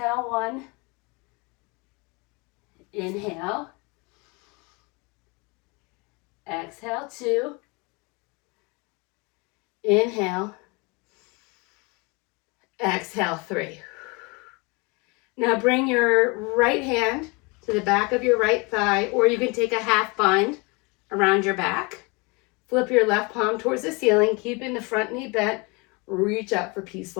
one. Inhale. Exhale, two. Inhale. Exhale, three. Now bring your right hand to the back of your right thigh, or you can take a half bind around your back. Flip your left palm towards the ceiling, keeping the front knee bent. Reach up for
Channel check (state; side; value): quieter; right; 28.5 dB